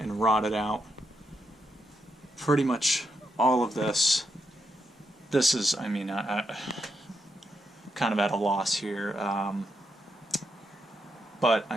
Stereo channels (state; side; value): normal; both; correlation 0.81